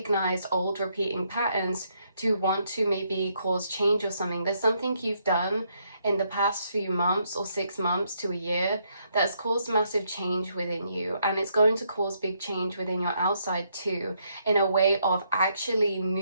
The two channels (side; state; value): both; inverted; correlation -0.74